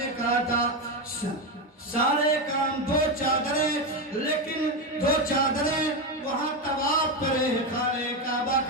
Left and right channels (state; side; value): normal; both; correlation 0.12